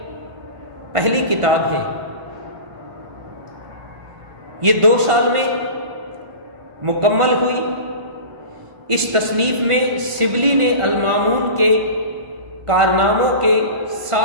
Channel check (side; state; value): left; late; 1.5 ms